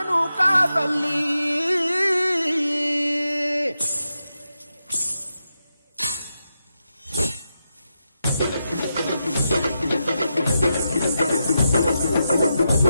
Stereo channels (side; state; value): both; inverted; correlation -0.87